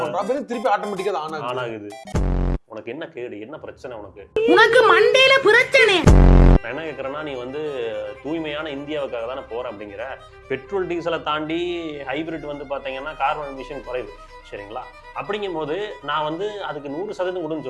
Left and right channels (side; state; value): both; identical; correlation 1.00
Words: பண்றோம், அப்புறம் திருப்பி ஆட்டோமேட்டிக்கா அது ஆன் ஆகுது. உனக்கு என்ன கேடு, என்ன பிரச்சனை உனக்கு? உனக்கு மண்டையில பிரச்சனை. நான் என்ன கேட்கறேன்னா, நீ வந்து தூய்மையான இந்தியாவுக்காக தானே போற அப்படிங்கிற. பெட்ரோல் டீசலை தாண்டி ஹைபிரிட் வந்து பாத்தீங்கன்னா கார்பன் எமிஷன் குறைவு, சரிங்களா? அப்படிங்கும் போது நான் வந்து அதுக்கு 100% கொடுன்னு